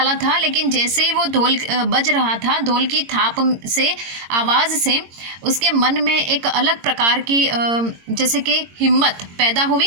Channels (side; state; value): left; late; 22 ms